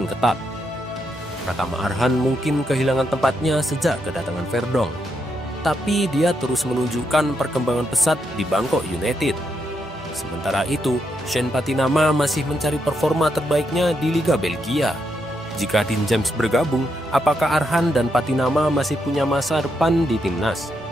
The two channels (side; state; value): both; normal; correlation 0.80